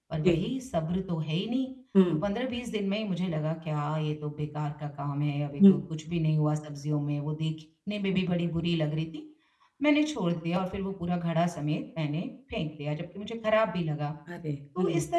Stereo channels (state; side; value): identical; both; correlation 1.00